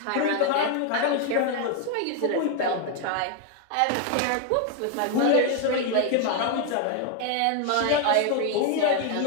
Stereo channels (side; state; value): both; different; correlation 0.01